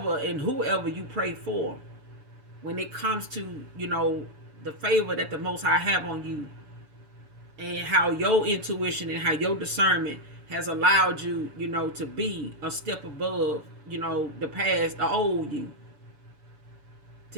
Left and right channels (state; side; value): late; left; 7.0 ms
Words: and whoever you pray for, when it comes to, the favor that the Most High have on you, and how your intuition and how your discernment has allowed you, to be a step above, the past, the old you,